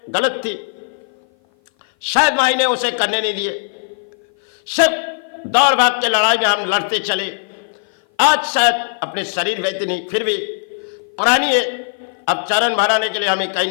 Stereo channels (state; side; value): silent; right; 56 dB below the other